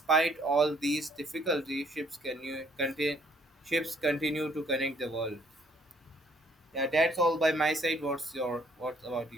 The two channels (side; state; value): both; normal; correlation 0.63